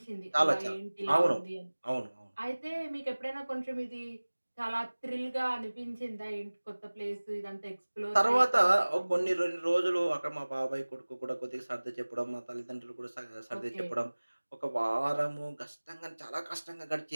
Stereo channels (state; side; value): inverted; both; correlation -1.00